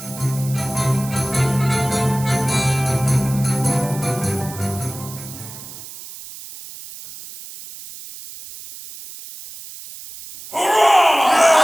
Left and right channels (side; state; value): right; noise; hiss, 14 dB below the sound